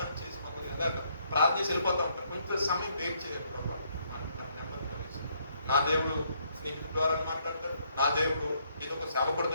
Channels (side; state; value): both; inverted; correlation -0.70